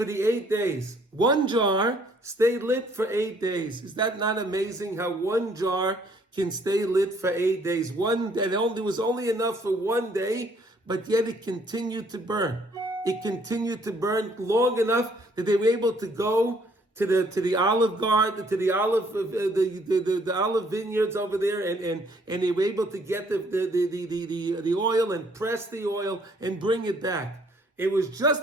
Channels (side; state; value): both; normal; correlation 0.63